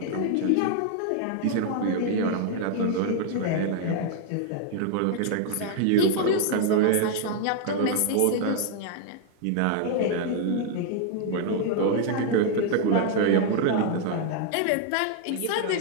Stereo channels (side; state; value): both; different; correlation 0.00